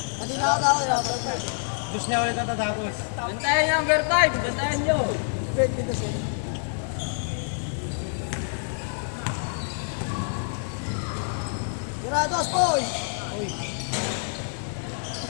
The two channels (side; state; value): right; silent; digital silence